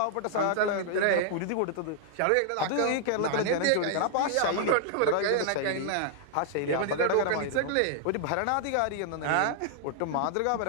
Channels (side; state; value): both; different; correlation -0.01